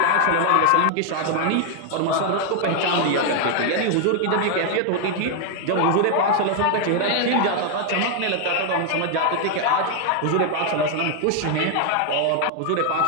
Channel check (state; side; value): different; both; correlation 0.00